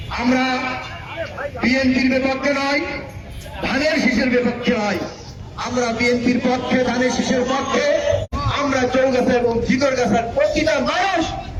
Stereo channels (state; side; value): identical; both; correlation 1.00